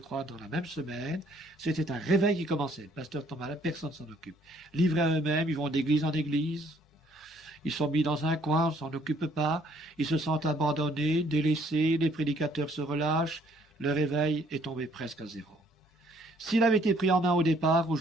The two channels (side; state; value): both; normal; correlation 0.63